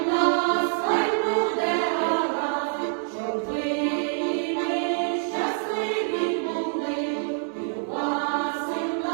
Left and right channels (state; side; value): silent; left; 61 dB below the other